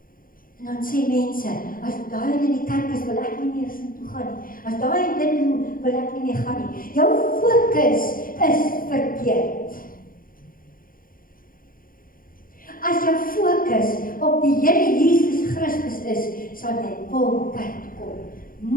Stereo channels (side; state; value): right; late; 0.41 ms